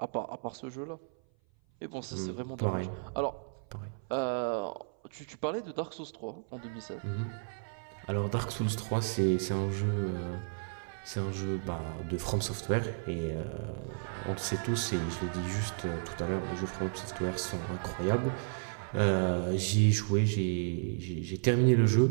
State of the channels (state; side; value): silent; left; 56 dB below the other